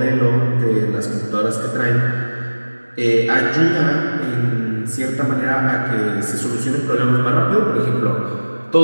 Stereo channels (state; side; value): inverted; both; correlation -1.00